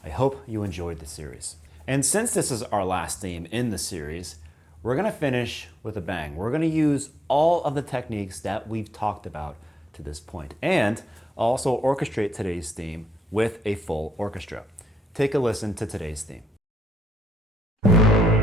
I hope you enjoyed the series. And since this is our last theme in the series, we're going to finish with a bang. We're going to use all of the techniques that we've talked about to this point, and also orchestrate today's theme with a full orchestra. Take a listen to today's theme.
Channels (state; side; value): normal; both; correlation 0.78